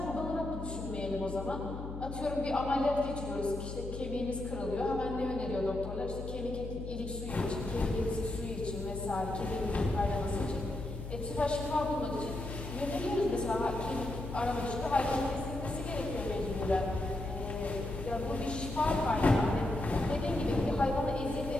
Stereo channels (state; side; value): noise; left; hum, 8 dB below the sound